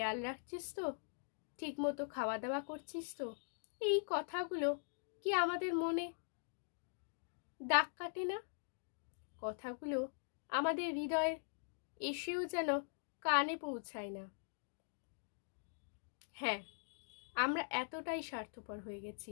রাখছিস তো? ঠিক মতো খাওয়া দাওয়া করছিস তো? এই কথাগুলো কি আমাদের মনে দাগ কাটে না? কথাগুলো আমাদের হৃদয়ে এসেও যেন কানে পৌঁছায় না। হ্যাঁ, আমরা এতটাই স্বার্থপর হয়ে গেছি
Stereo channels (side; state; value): right; silent; digital silence